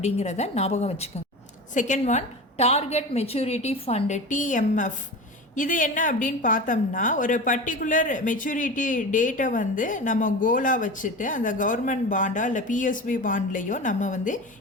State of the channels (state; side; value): normal; both; correlation 0.30